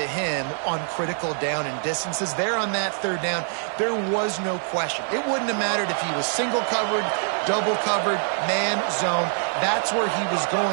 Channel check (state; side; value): silent; left; 62 dB below the other